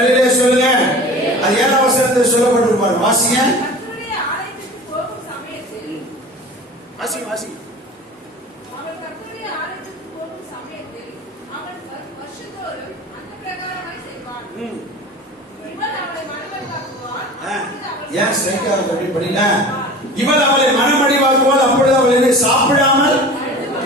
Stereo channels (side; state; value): both; normal; correlation 0.38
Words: சொல்லுங்க. அது 7ஆம் வசனத்தில் சொல்லப்பட்டிருப்பார். வாசிங்க. வாசி வாசி. அவள் கர்த்தருடைய ஆலயத்துக்கு போகும் சமயத்தில் அவன் வருஷந்தோறும் அந்த பிரகாரமாய் செய்வான். இவள் அவளை மனமடிவாக்குவாள். ஏன் ஸ்ட்ரைக்கா அப்படி படிங்க? இவள் அவளை மனமடிவாக்குவாள். அப்பொழுது அவள் என்ன சாப்பிடாமல்